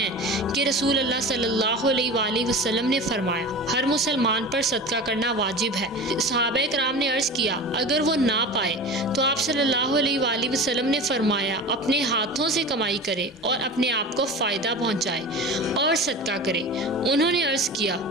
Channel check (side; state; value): both; normal; correlation 0.32